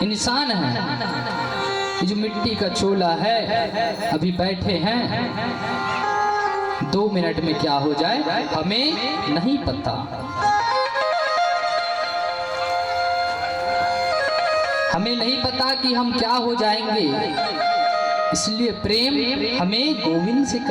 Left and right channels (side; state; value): both; identical; correlation 1.00